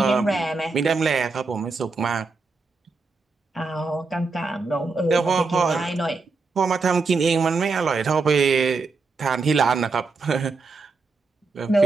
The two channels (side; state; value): left; quieter; 4.1 dB